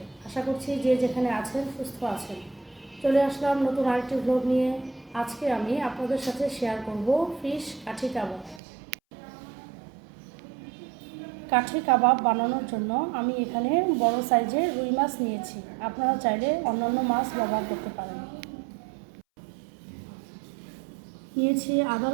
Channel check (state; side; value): drops out; left; at 8.6 s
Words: আশা করছি যে যেখানে আছেন সুস্থ আছেন। চলে আসলাম নতুন আরেকটি ব্লগ নিয়ে। আজকে আমি আপনাদের সাথে শেয়ার করব ফিশ কাঠি কাবাব। কাঠি কাবাব বানানোর জন্য আমি এখানে বড় সাইজের রুই মাছ নিয়েছি। আপনারা চাইলে অন্যান্য মাছ ব্যবহার করতে পারেন। নিয়েছি আদা